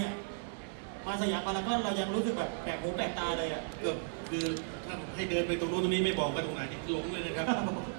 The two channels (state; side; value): silent; left; 54 dB below the other